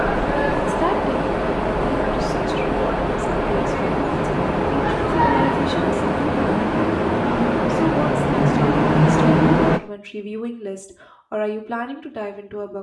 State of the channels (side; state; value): both; identical; correlation 1.00